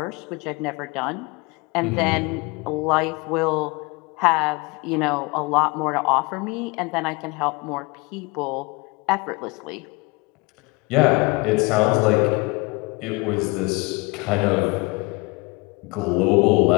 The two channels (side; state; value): right; quieter; 26.7 dB